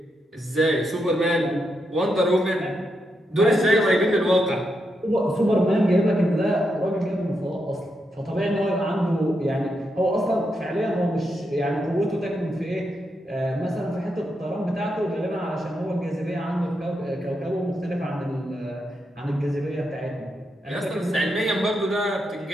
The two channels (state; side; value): normal; both; correlation 0.83